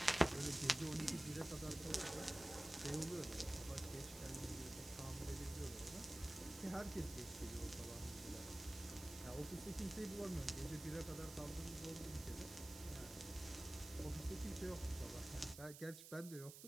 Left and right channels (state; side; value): noise; right; hiss, 12 dB below the sound